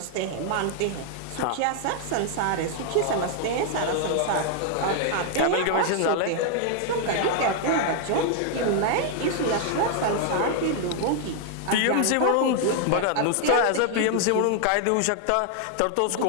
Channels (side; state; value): both; different; correlation 0.00